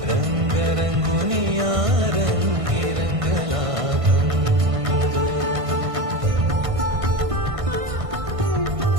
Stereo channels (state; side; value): late; left; 1.5 ms